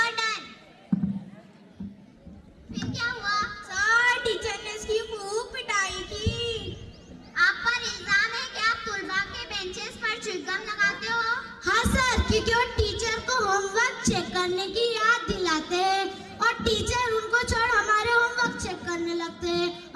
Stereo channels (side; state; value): both; identical; correlation 1.00